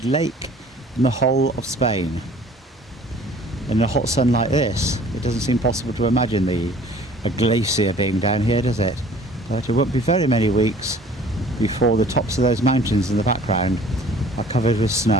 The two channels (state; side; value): normal; both; correlation 0.51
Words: lake in the whole of Spain. In a hot sun like this, it doesn't seem possible to imagine a glacier being down here, does it? But it won't be very many weeks before the tops of those mountains in the background are covered with